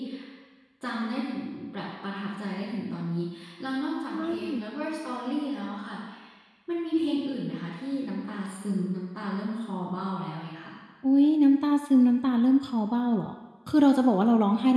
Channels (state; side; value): identical; both; correlation 1.00